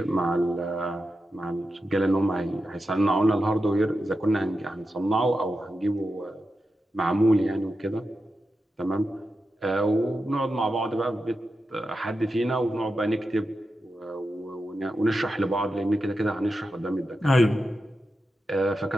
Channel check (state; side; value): normal; both; correlation 0.90